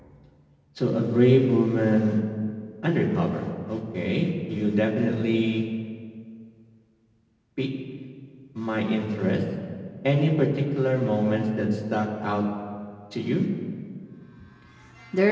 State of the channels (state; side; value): identical; both; correlation 1.00